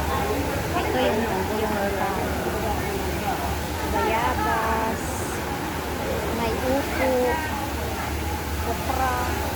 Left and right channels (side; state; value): both; identical; correlation 1.00